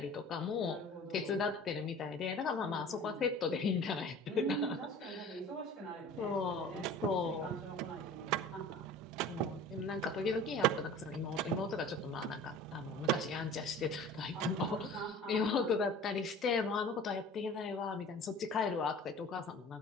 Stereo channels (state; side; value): normal; both; correlation 0.42